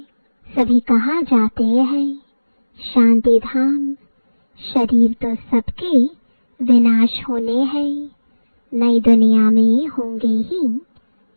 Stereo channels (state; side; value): inverted; both; correlation -1.00